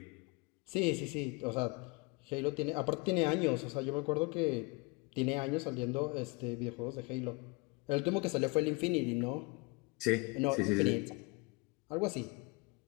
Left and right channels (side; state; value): right; quieter; 28.3 dB